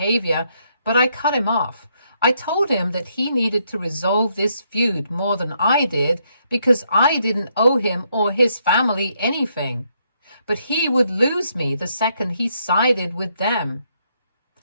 but I cut him off. I told him that he needed to resolve this feud more than I did because I didn't owe him or his family anything. But he would lose me the second he sided with them.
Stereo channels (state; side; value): inverted; both; correlation -0.74